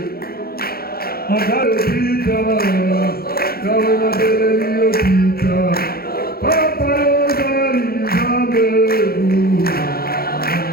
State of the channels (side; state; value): right; late; 0.44 ms